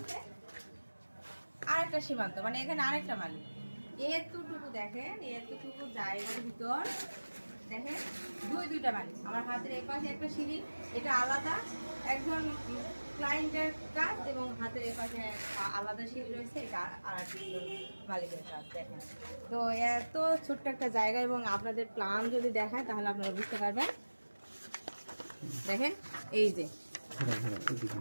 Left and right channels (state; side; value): inverted; both; correlation -1.00